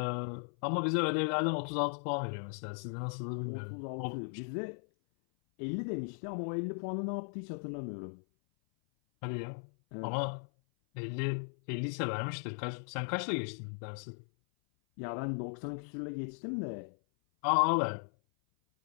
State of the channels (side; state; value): right; silent; 53 dB below the other